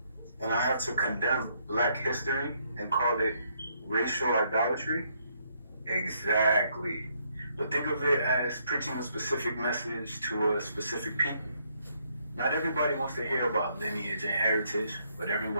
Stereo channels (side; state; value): both; inverted; correlation -0.72